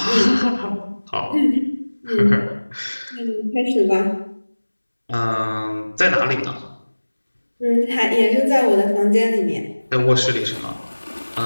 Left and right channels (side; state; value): both; inverted; correlation -1.00